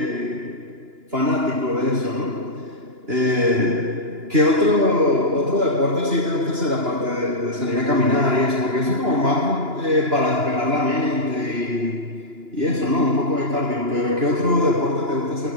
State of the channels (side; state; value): left; late; 2.9 ms